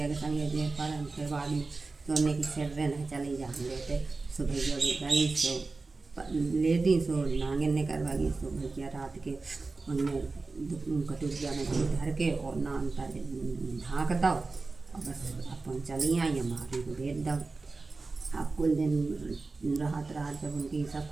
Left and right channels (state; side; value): quieter; left; 3.8 dB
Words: के संगे जे पर हम फिर बाद में सोने की सिर नहीं चले जा हम लेते सो भैया गई सो ले दी सो नांगे ने करवा गई सो भैया रात के उनमें कटोरिया में दूध धर के और नान पर ढाँक दो और बस अपन चली आई हमारी को भेज दो। अब कुल दिन राहत जब उनकी सब